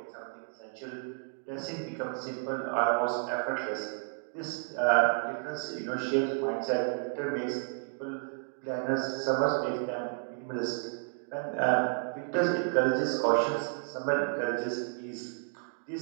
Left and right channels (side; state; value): left; silent; 57 dB below the other